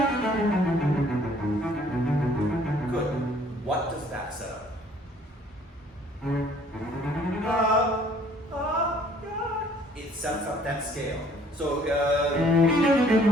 Good. What does that set up? It sets up that scale. So,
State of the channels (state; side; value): normal; both; correlation 0.58